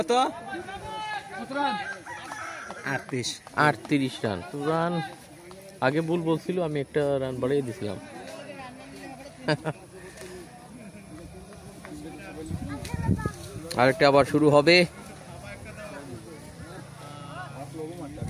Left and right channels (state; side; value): identical; both; correlation 1.00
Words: 38 রান। রান আগে ভুল বলছিল, আমি একটা রান বাড়িয়ে দিছিলাম। আরেকটা আবার শুরু হবে।